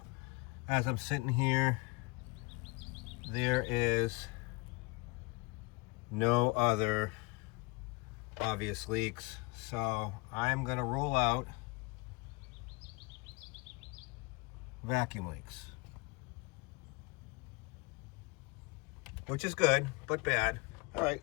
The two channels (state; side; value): quieter; right; 26.6 dB